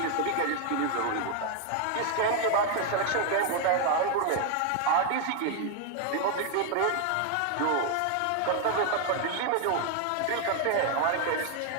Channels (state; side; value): different; both; correlation 0.01